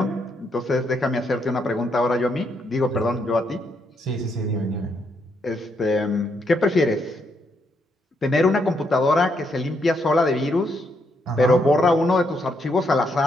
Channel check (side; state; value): both; normal; correlation 0.76